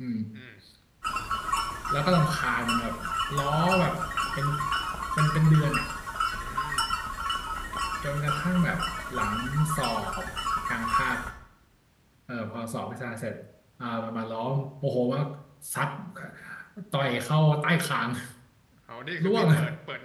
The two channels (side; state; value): both; identical; correlation 1.00